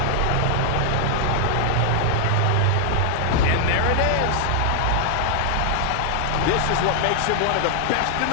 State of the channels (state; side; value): different; both; correlation 0.00